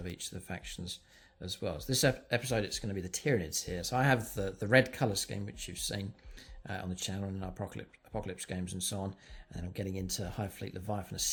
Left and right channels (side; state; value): both; identical; correlation 1.00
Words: each of the factions as well. So this episode, it's going to be the Tyranids here. So I have the red colour scheme, which you've seen on the channel and in our Apocalypse games and so on. And then I'm getting into Hive Fleet Leviathan, a